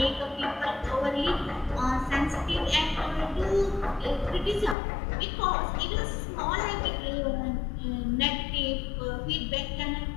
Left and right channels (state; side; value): drops out; right; at 4.8 s